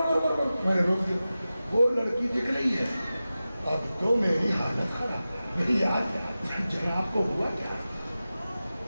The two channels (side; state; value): both; inverted; correlation -0.94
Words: نے روک دیا. وہ لڑکی دکھ رہی ہے. اب تو میری حالت خراب. میری یاد جناب کو ہوا کیا؟